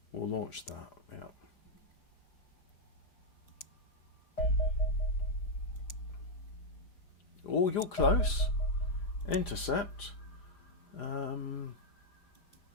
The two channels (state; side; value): late; right; 5.0 ms